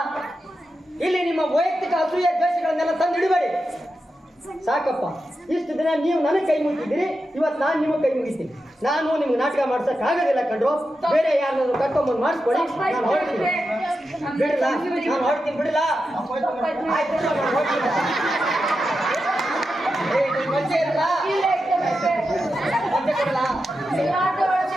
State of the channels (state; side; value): normal; both; correlation 0.89